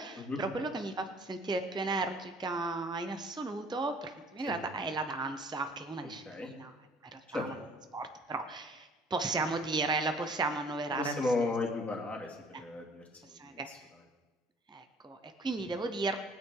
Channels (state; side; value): normal; both; correlation 0.55